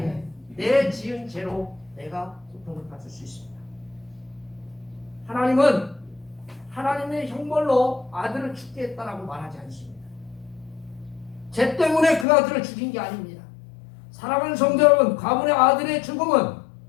내 지은 죄로 내가 고통을 받을 수 있습니다. 하나님은 하나님의 형벌로 아들을 죽게 했다라고 말하지 않습니다. 죄 때문에 그 아들을 죽인 게 아닙니다. 사랑하는 성도 여러분, 가문의 아들의 죽음은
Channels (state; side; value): drops out; right; at 12.2 s